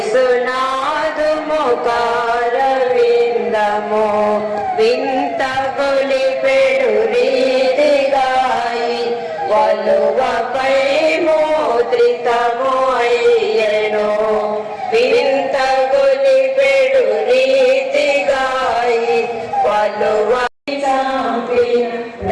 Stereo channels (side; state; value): both; identical; correlation 1.00